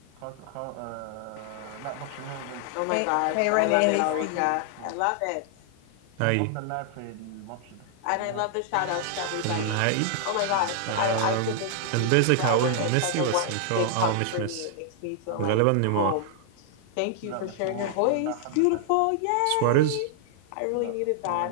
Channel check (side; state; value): both; different; correlation 0.00